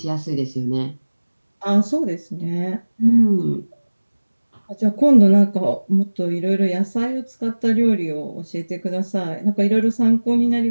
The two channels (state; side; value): inverted; both; correlation -1.00